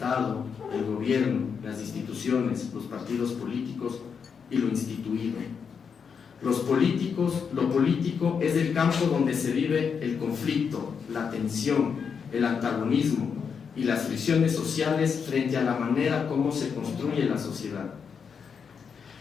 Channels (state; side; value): quieter; right; 6.4 dB